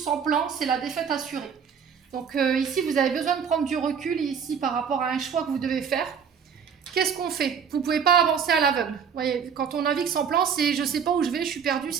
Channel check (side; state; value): left; quieter; 7.0 dB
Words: plan, c'est la défaite assurée. Donc ici, vous avez besoin de prendre du recul ici par rapport à un choix que vous devez faire. Qu'est-ce qu'on fait ? Vous ne pouvez pas avancer à l'aveugle. Vous voyez, quand on navigue sans plan, c'est je ne sais pas où je vais, je suis perdu,